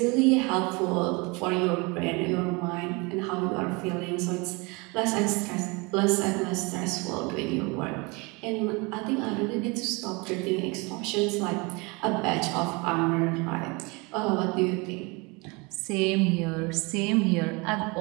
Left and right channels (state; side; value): quieter; left; 27.6 dB